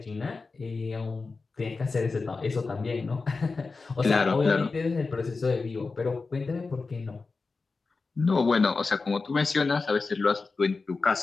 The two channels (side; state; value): right; quieter; 4.1 dB